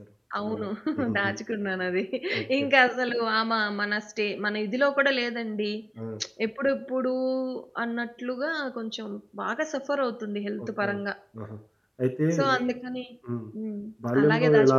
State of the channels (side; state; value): both; identical; correlation 1.00